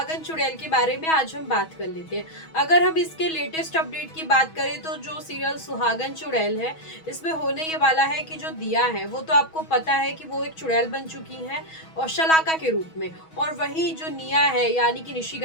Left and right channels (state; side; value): late; right; 6.2 ms